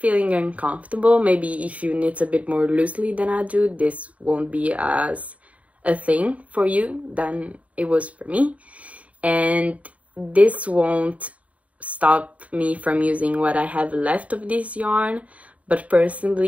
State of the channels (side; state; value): left; late; 0.067 ms